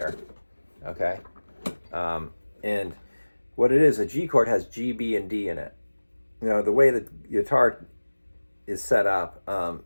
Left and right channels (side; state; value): both; inverted; correlation -1.00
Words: Okay, and what it is, a G chord has G, B, and D in it. You know, the way the guitar is set up,